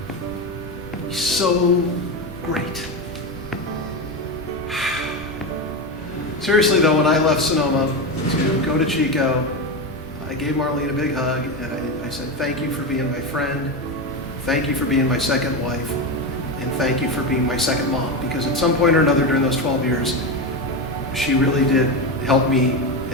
It would be so great. Seriously though, when I left Sonoma to go to Chico, I gave Marlene a big hug, and I said, thank you for being my friend, thank you for being my second wife, and thank you for being my second mom, because at some point or another during those 12 years, she really did help me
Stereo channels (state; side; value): normal; both; correlation 0.16